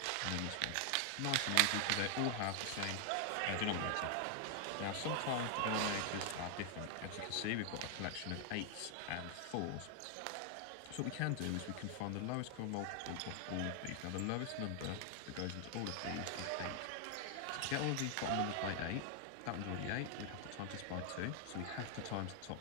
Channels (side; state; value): both; different; correlation 0.00